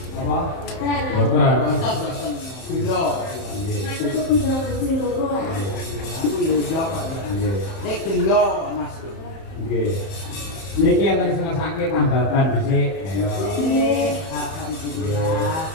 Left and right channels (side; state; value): right; late; 31 ms